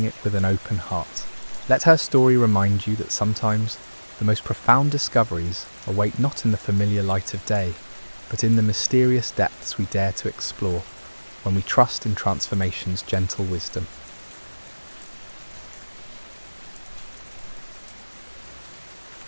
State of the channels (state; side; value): inverted; both; correlation -1.00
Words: it with an open heart. Let her story remind you that sometimes the most profound discoveries await not in the familiar light of day, but in the mysterious depths we dare to explore when we trust in transformation's gentle wisdom.